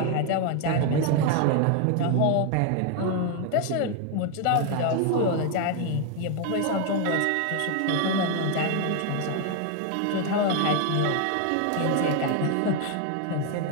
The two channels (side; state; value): both; different; correlation 0.01